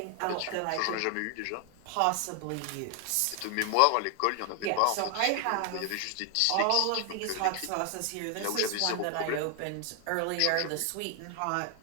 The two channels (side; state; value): both; different; correlation 0.00